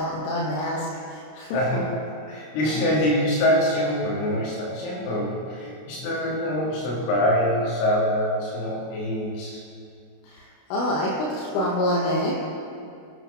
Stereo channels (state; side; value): late; right; 33 ms